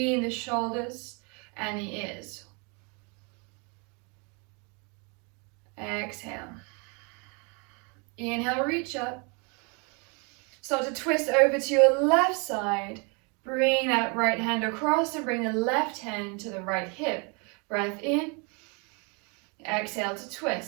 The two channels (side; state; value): left; quieter; 33.4 dB